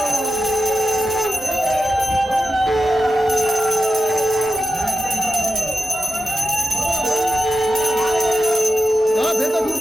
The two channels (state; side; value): normal; both; correlation 0.91